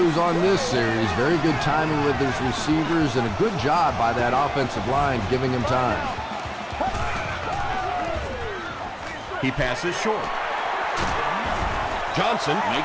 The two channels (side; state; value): both; identical; correlation 1.00